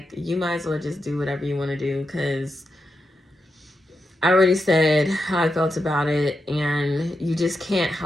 you might as well just do whatever you want to do, because I already said how I felt about it, and you just can't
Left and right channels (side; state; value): both; normal; correlation 0.87